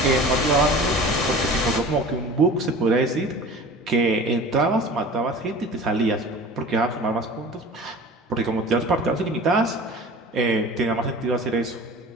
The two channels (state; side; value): normal; both; correlation 0.40